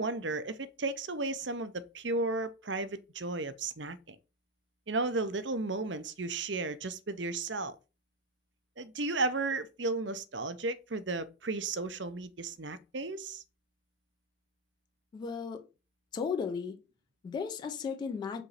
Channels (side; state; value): both; normal; correlation 0.05